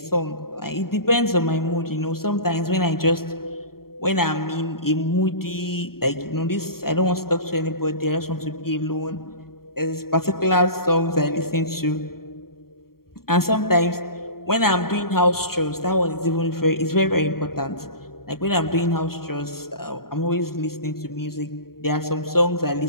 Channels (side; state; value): right; late; 0.93 ms